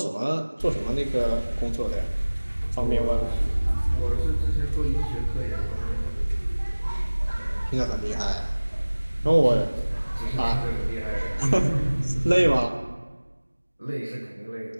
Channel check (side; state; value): both; inverted; correlation -1.00